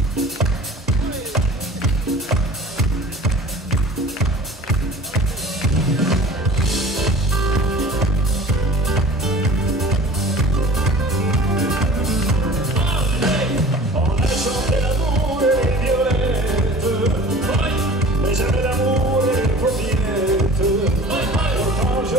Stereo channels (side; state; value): both; normal; correlation 0.42